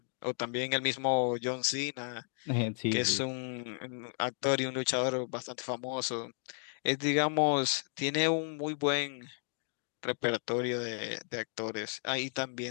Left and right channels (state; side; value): silent; right; 55 dB below the other